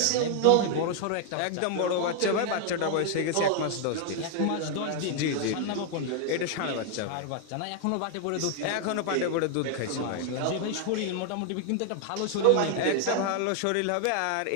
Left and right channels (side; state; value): both; different; correlation 0.00